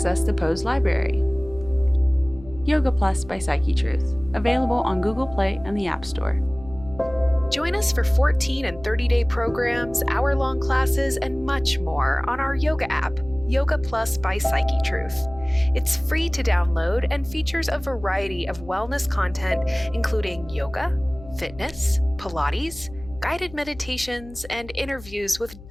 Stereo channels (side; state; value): left; noise; hum, 18 dB below the sound